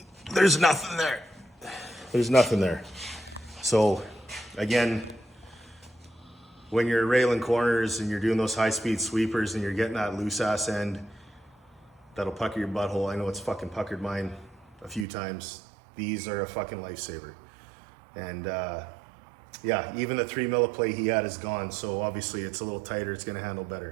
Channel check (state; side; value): drops out; left; at 15.1 s